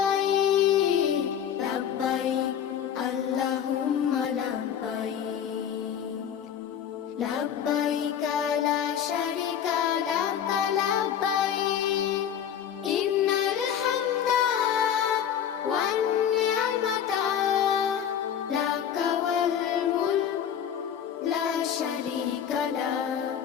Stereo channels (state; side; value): quieter; right; 9.0 dB